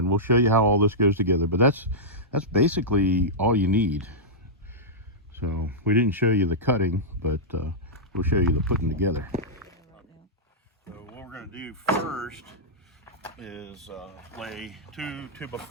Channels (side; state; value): both; normal; correlation -0.11